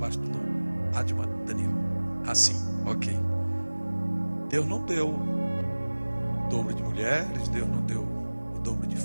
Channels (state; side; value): inverted; both; correlation -1.00